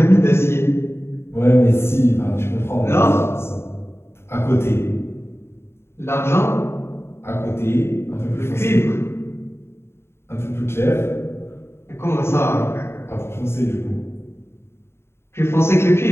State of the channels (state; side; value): late; right; 0.12 ms